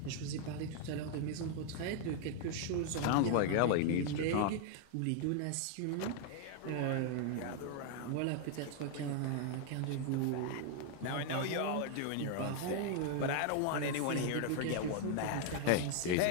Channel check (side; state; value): both; different; correlation 0.00